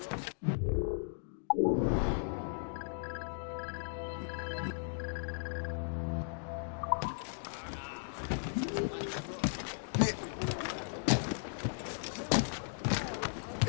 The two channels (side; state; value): right; silent; digital silence